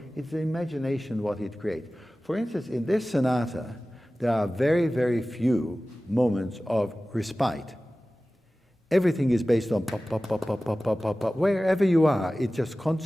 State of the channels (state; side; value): normal; both; correlation 0.97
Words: imagination what it creates. For instance, in this sonata, there are very, very few moments of respite. Everything is based on pop, pop, pop, pop, pop, pop, pop, pop. Wherever you are, it's just